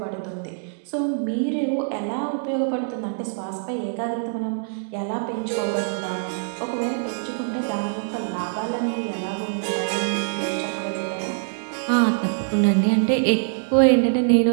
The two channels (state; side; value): silent; left; 62 dB below the other